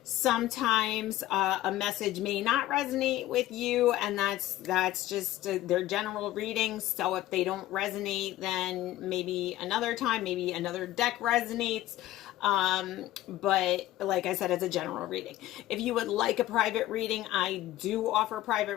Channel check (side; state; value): right; quieter; 14.7 dB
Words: Sometimes a message may not resonate with you, and that's just their general readings. So if they don't resonate, then maybe another time, maybe another deck resonates. But like I said, it's a general reading. If you would like a private reading, I do offer